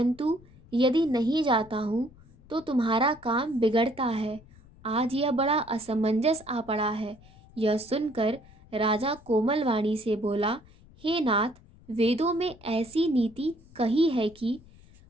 यदि नहीं जाता हूँ तो तुम्हारा काम बिगड़ता है। आज यह बड़ा असमंजस आ पड़ा है। यह सुनकर राजा कोमल वाणी से बोला, हे नाथ, वेदों में ऐसी नीति कही है कि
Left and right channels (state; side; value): noise; left; rumble, 24 dB below the sound